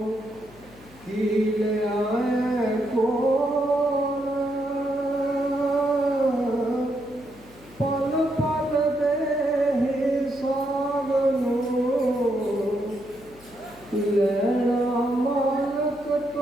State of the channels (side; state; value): left; noise; hum, 24 dB below the sound